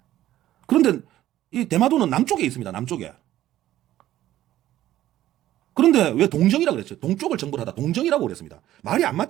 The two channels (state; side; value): quieter; left; 13.7 dB